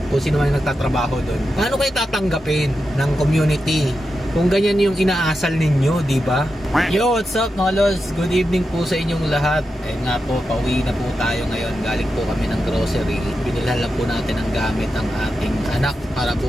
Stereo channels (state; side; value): normal; both; correlation 0.89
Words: kung sino man nagtatrabaho dun. Paano kayo tatanggapin ng community kung ganyan yung inaasal ninyo, di ba? Yo, what's up mga lods? Good evening po sa inyong lahat. Eh nga po, pauwi na po tayo ngayon. Galing po kami ng grocery. Binilhan lang po natin ang gamit ng ating anak para